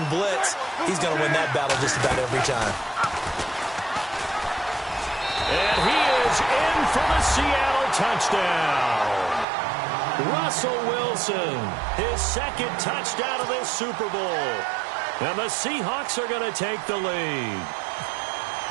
blitz, he's going to win that battle just about every time. And he is in for the Seattle touchdown. Russell Wilson, his 2nd touchdown of this Super Bowl. And the Seahawks are going to take the lead.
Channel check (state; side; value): drops out; left; at 9.5 s